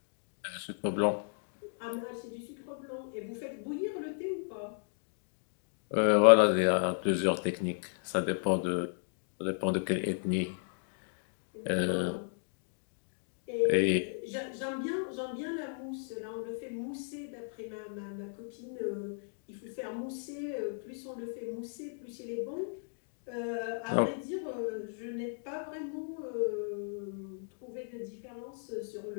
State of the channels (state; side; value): silent; right; digital silence